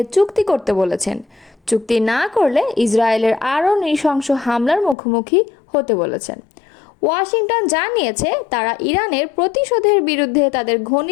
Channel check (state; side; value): drops out; right; at 5.0 s